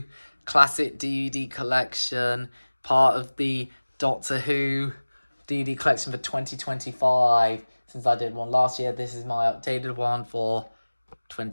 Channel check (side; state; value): both; inverted; correlation -1.00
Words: classic DVD collection, part of the Doctor Who DVD collection for 2025. Since I did one last year, this is my updated one for